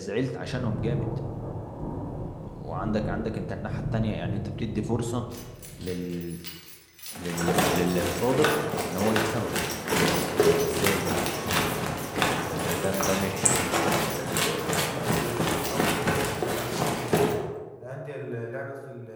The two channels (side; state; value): both; identical; correlation 1.00